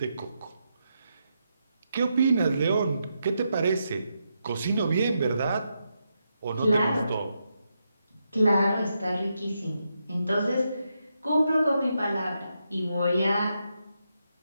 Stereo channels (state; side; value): inverted; both; correlation -0.83